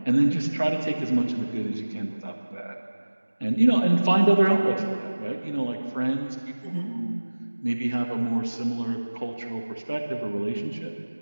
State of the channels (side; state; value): both; inverted; correlation -1.00